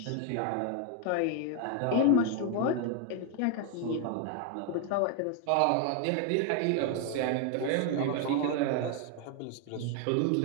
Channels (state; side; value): different; both; correlation 0.00